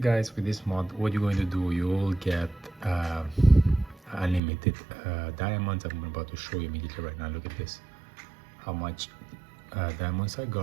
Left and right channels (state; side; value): drops out; left; at 4.4 s